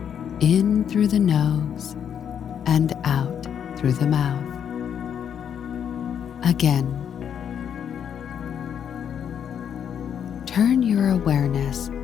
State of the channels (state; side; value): quieter; right; 8.4 dB